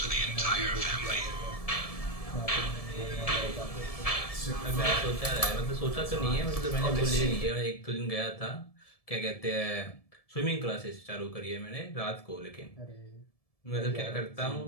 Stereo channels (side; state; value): right; late; 1.7 ms